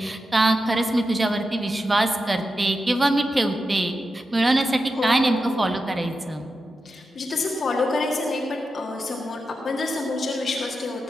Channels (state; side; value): normal; both; correlation 0.89